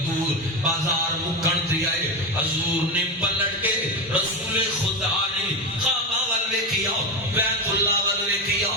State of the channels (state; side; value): normal; both; correlation 0.16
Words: بازار مکن تے آئے حضور نے پلٹ کے رسول خدا نے کعبہ ول ویکھیا بیت اللہ ول ویکھیا